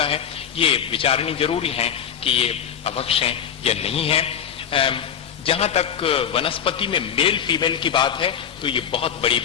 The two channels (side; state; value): right; quieter; 8.5 dB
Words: है, ये विचारणी जरूरी है कि ये अभक्ष है या नहीं है। जहां तक वनस्पति में मेल फीमेल की बात है तो ये बहुत बड़ी